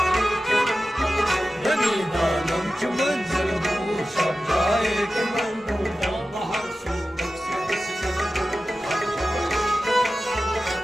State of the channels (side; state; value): both; normal; correlation 0.94